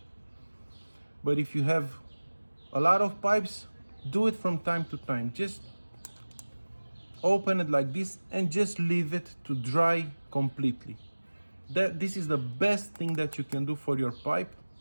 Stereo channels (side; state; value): both; inverted; correlation -1.00